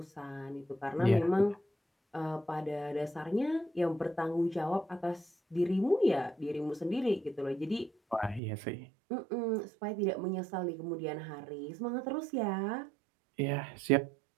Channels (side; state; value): left; drops out; at 8.4 s